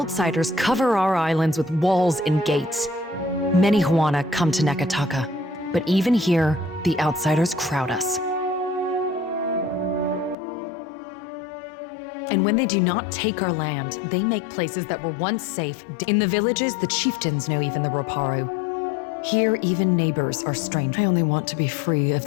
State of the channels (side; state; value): right; drops out; at 10.4 s